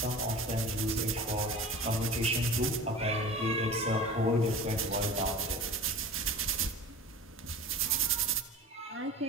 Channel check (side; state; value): both; normal; correlation 0.36